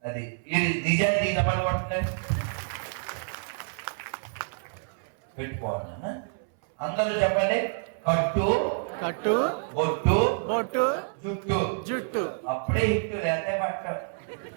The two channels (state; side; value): silent; left; 59 dB below the other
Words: అది నిజాన్ని పని పడుతుంది. పెట్టుకోవాలి నాన్న. అందరూ చెప్పండి. కట్టు, కట్టు, బొట్టు, బొట్టు, జుట్టు. జుట్టు. అప్పుడే హిట్టు లేదే పట్ట